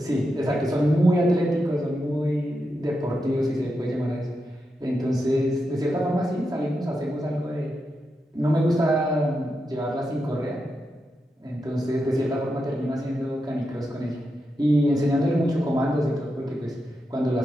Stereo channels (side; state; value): both; normal; correlation 0.87